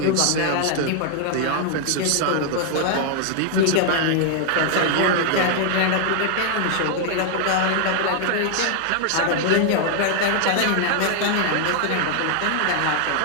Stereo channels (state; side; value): different; both; correlation 0.00